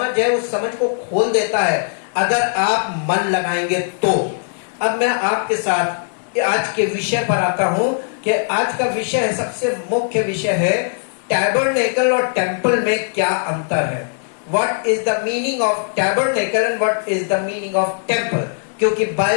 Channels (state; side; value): silent; right; 65 dB below the other